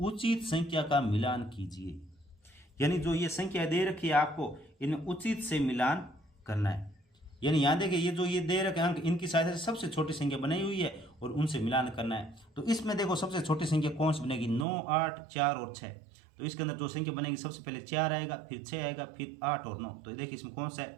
संख्या का मिलान कीजिए। यानी जो ये संख्या दे रखी है आपको, इनमें उचित से मिलान करना है। यानी यहाँ देखिए ये जो ये दे रखे अंक, इनकी सहायता से सबसे छोटी संख्या बनाई हुई है और उनसे मिलान करना है। तो इसमें देखो सबसे छोटी संख्या कौन सी बनेगी, 9 8 4 और 6। तो इसके अंदर जो संख्या बनेगी सबसे पहले 4 आएगा, फिर 6 आएगा, फिर 8 और 9। तो देखिए इसमें कौन सा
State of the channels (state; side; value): drops out; left; at 14.7 s